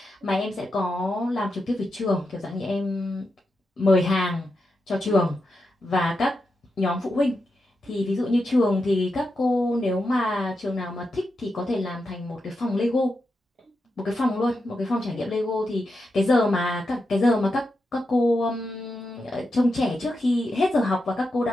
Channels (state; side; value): normal; both; correlation 0.87